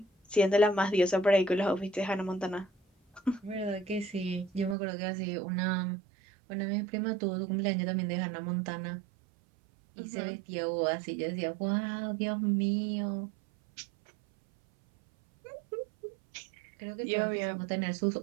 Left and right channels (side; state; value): left; drops out; at 4.8 s